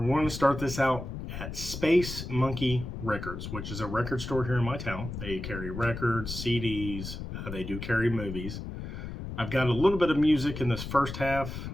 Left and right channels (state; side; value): noise; left; rumble, 8 dB below the sound